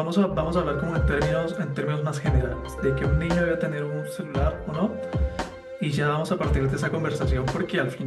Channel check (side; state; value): both; identical; correlation 1.00